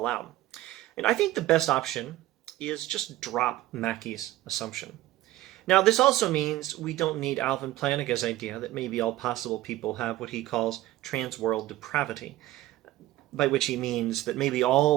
out. And I think the best option is just drop Mackie's assumption. Now, this also means we don't need Alvin Plantinga's idea that maybe all possible people have what he calls trans-world depravity, by which he means that maybe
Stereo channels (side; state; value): left; quieter; 15.8 dB